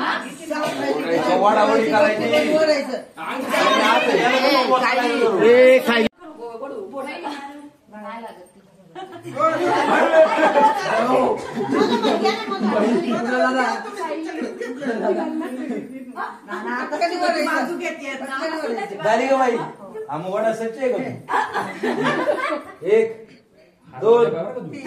वडावडी करायची. खाई नाही लागत ती. झाली का बाई? आम्ही वडा सच्चे आहे का? 1 2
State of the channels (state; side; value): identical; both; correlation 1.00